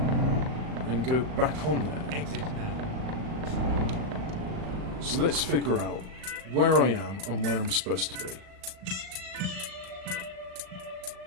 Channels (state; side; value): late; left; 38 ms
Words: and go back on there? Exit now. So let's figure out where I am and where I'm supposed to be.